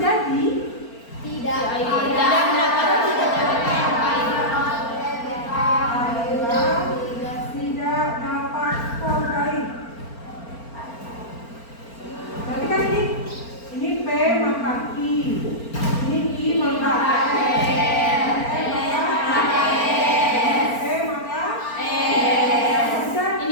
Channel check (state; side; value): late; right; 4.4 ms